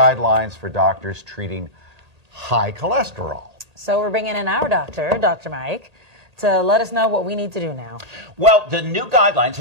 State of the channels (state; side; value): late; left; 1.8 ms